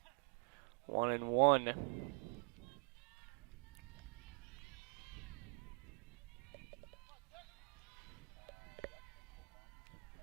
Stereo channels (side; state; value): left; quieter; 38.6 dB